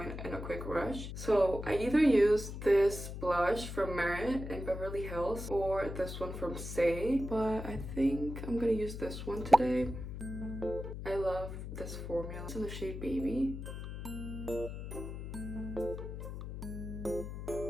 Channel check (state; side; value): noise; left; hum, 8 dB below the sound